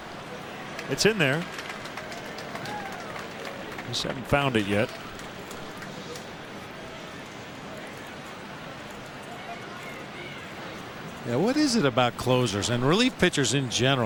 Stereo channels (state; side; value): identical; both; correlation 1.00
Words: It's in there. Just haven't found it yet. Yeah, what is it about closers and relief pitchers in